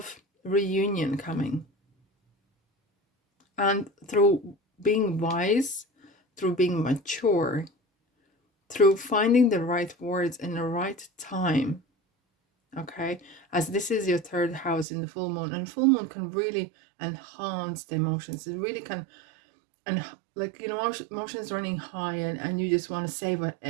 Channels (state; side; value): drops out; left; at 14.9 s